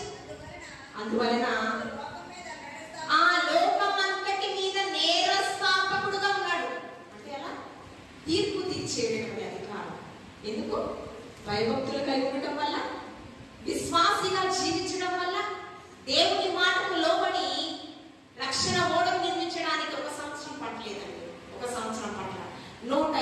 అందువలన ఆ లోకమంతటి మీద నేరస్థాపకుడుగా ఉన్నాడు. అంటే అలా తీర్పు తీర్చేటటువంటి అధికారం. ఎందుకు? భయభక్తులు కలిగి ఉండటం వల్ల, విశ్వాసిగా జీవించడం వల్ల, దేవుని మాటకు లోబడి రక్షణ ఓడను నిర్మించడానికి 1 సంవత్సరం పట్టలేదండి. 1 సంవత్సరం పట్ల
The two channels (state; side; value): identical; both; correlation 1.00